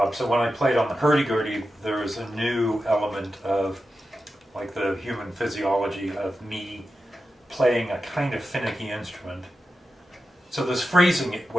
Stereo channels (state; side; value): normal; both; correlation 0.91